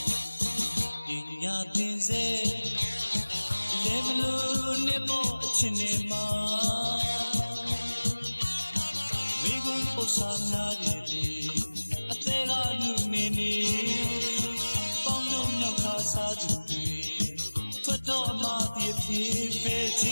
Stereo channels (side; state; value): both; inverted; correlation -1.00